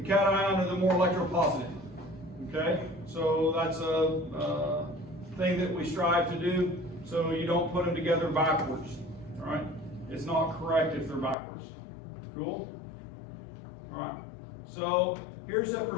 cation are the more electropositive. Okay? So that's a thing that we strive to do, so you don't put them together backwards. All right? It's not correct if they're backwards. Cool? All right. So here's a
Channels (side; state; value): right; drops out; at 11.4 s